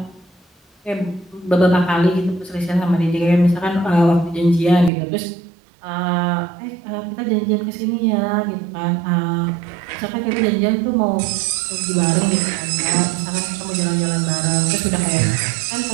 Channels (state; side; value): drops out; left; at 4.9 s